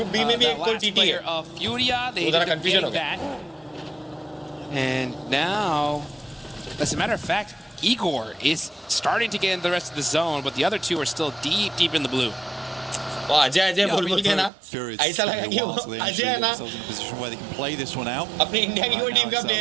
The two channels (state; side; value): drops out; left; at 14.5 s